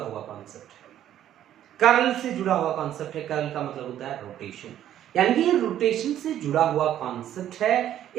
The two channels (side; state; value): left; quieter; 11.4 dB